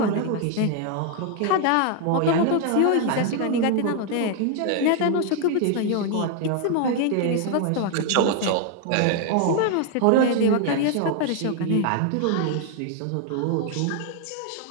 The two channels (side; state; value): both; different; correlation 0.00